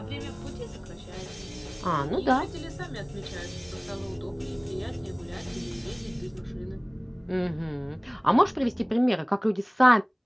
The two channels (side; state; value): both; identical; correlation 1.00